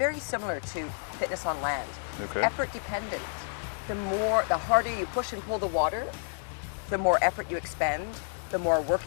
similar to fitness on land. Okay. It's effort dependent. The harder you push and pull the water, the more effort you expend, the more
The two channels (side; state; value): right; silent; digital silence